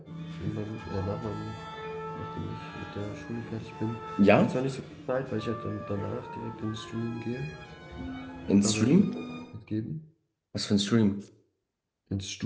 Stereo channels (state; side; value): identical; both; correlation 1.00